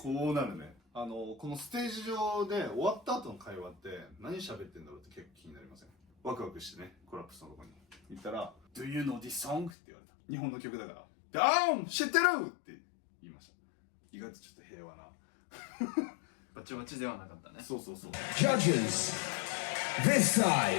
こうなるね。このステージ上で終わった後の会話って何喋ってんだろうって結構気になりません？ワクワクしてね、コラップスのとこに行ったら Do you know this song? って言われた。日本の曲だからで、知ってるって言いました。意外とちょっと平和なバチバチではなかったね。そうそうそう。 Judges, this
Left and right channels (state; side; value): drops out; right; at 9.7 s